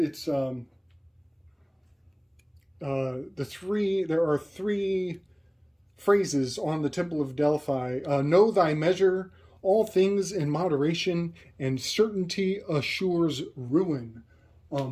there are three phrases on the Temple of Delphi. Know thy measure, all things in moderation, and certainty assures ruin.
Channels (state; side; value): identical; both; correlation 1.00